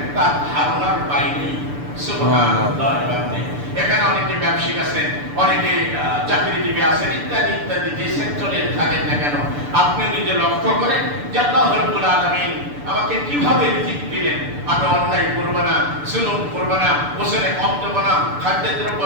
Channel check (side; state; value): left; late; 6.9 ms